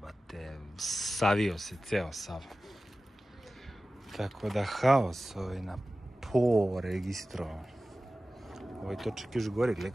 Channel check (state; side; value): normal; both; correlation 0.96